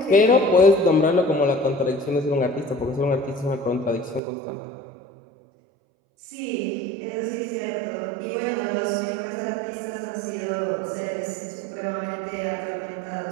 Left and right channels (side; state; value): left; drops out; at 4.2 s